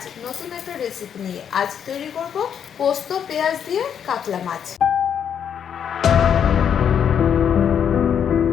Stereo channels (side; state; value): right; quieter; 8.3 dB